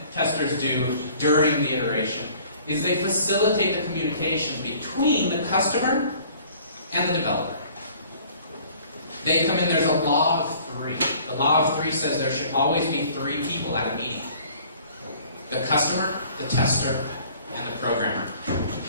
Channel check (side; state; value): both; inverted; correlation -0.53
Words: testers do during the iteration is they facilitate the communication between the customer and the developer. They come in, there's a law of three. The law of three says there should always be 3 people at a meeting. The customer, the tester, and the programmer.